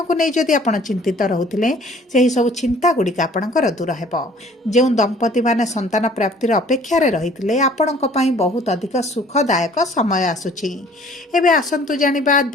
ନେଇ ଯଦି ଆପଣ ଚିନ୍ତିତ ରହୁଥିଲେ, ସେହି ସବୁ ଚିନ୍ତା ଗୁଡ଼ିକ ଆପଣଙ୍କର ଦୂର ହେବ। ଯେଉଁ ଦମ୍ପତିମାନେ ସନ୍ତାନ ପ୍ରାପ୍ତିର ଅପେକ୍ଷାରେ ରହିଥିଲେ, ଆପଣଙ୍କ ପାଇଁ ବହୁତ ଅଧିକ ସୁଖଦାୟକ ସମୟ ଆସୁଛି। ଏବେ ଆସନ୍ତୁ ଜାଣିବା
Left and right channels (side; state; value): both; normal; correlation 0.54